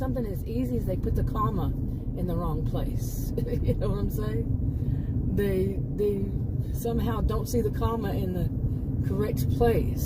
as easy as they put the comma in the wrong place. You know what I'm saying? They somehow don't see the comma in the correct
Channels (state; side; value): identical; both; correlation 1.00